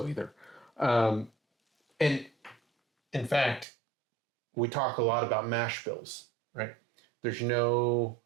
either. And in fact, we talk a lot about mash bills, right? There's no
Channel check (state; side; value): drops out; left; at 3.7 s